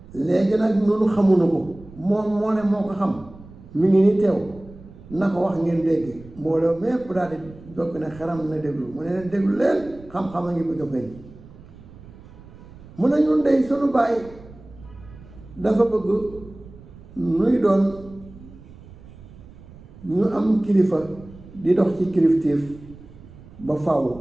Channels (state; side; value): noise; right; rumble, 20 dB below the sound